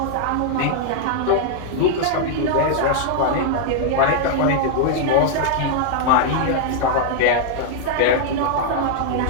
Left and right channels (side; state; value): both; different; correlation -0.01